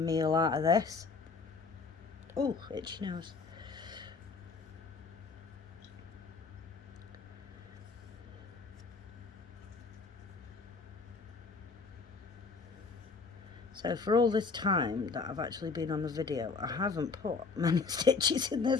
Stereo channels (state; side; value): quieter; right; 4.5 dB